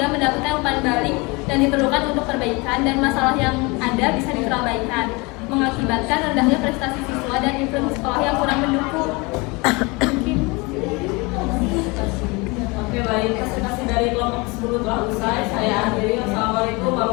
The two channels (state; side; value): quieter; right; 26.5 dB